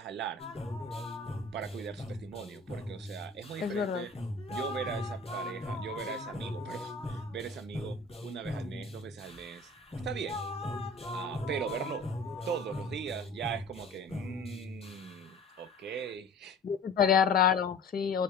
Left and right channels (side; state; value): right; quieter; 3.1 dB